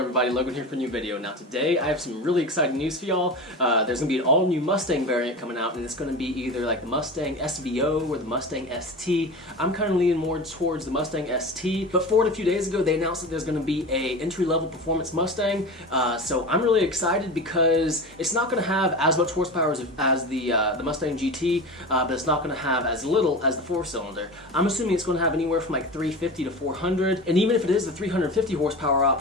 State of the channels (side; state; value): both; normal; correlation 0.29